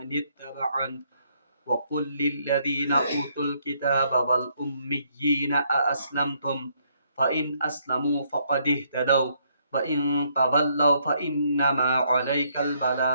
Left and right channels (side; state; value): both; inverted; correlation -0.71